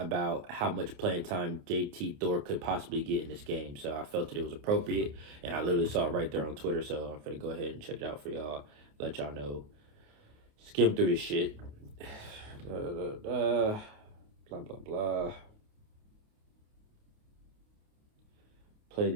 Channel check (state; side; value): late; left; 28 ms